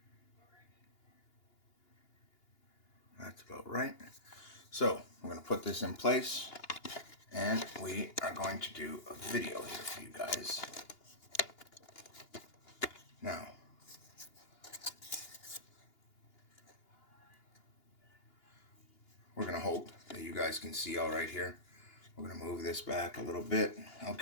That's about right. So we're going to put this in place, and we are going to do a video here for you guys. Now, we're going to hope that you guys can see all right here. We're going to move this back a little bit.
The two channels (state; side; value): late; right; 2.8 ms